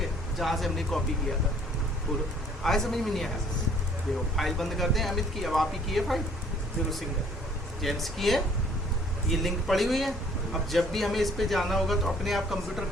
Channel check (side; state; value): both; normal; correlation 0.58